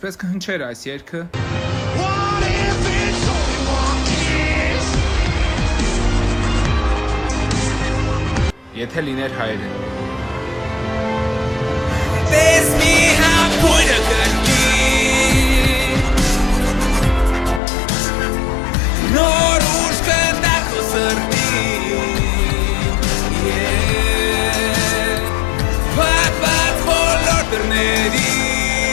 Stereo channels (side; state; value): right; drops out; at 17.6 s